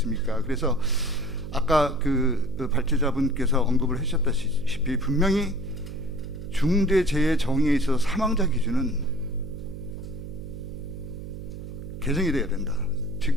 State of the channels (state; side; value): noise; right; hum, 10 dB below the sound